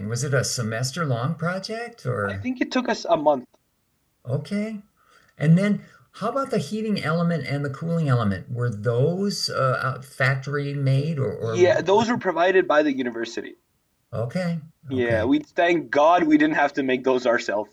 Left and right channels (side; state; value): both; identical; correlation 1.00